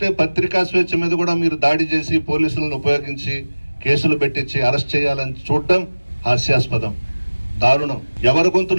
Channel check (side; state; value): both; inverted; correlation -1.00